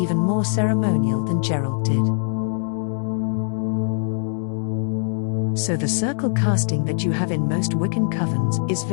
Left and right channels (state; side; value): silent; right; digital silence